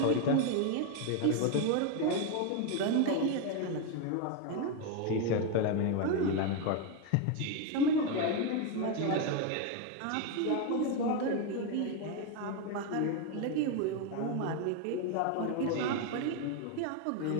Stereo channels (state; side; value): different; both; correlation 0.02